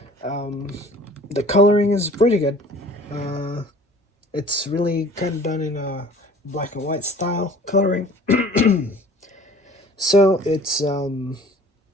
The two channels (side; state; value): both; normal; correlation 0.48